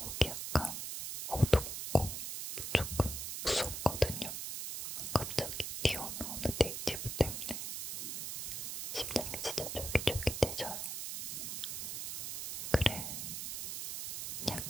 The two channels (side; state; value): right; noise; hiss, 4 dB below the sound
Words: 여기 약간 어둡고 조금 무섭거든요. 갑자기 튀어나오는 네이티브 때문에 심장이 진짜 쫄깃쫄깃해져요. 그래.